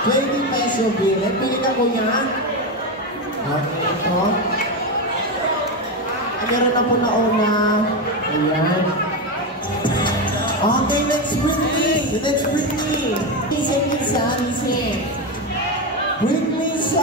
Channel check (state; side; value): normal; both; correlation 0.13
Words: 20 peso bill. Pili ka kuya. Okay, ito. Meron na po na una. Ayan. Okay, let's bring me. Let's bring me. Listen. Bring me